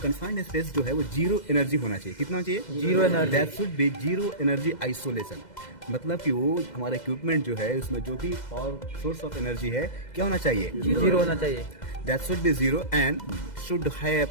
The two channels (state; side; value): late; right; 2.0 ms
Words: स्पेस जो है वो जीरो एनर्जी होना चाहिए। कितना चाहिए? Zero energy. That should be zero energy isolation. मतलब कि वो हमारा इक्विपमेंट जो है उसमें जो भी पावर सोर्स ऑफ एनर्जी है क्या होना चाहिए? जीरो होना चाहिए। That should be zero and should have